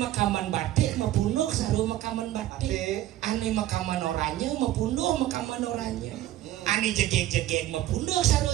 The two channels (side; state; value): left; quieter; 14.0 dB